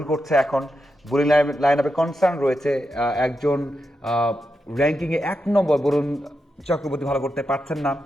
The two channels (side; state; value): both; normal; correlation 0.87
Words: করছে এখন, বোলিং লাইন আপে কনসার্ন রয়েছে। একজন র্যাঙ্কিংয়ে 1 নম্বর বরুণ চক্রবর্তী ভালো করতে পারছেন না,